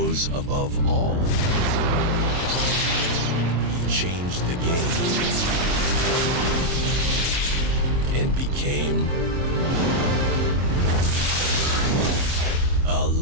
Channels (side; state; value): left; late; 23 ms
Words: rose above all. He changed the game and became a